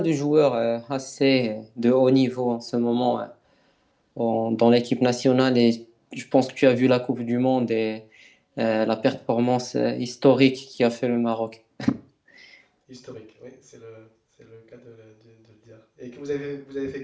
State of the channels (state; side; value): identical; both; correlation 1.00